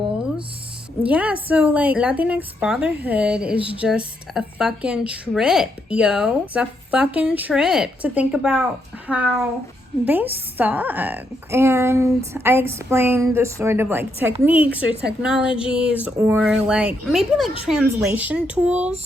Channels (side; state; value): both; normal; correlation 0.78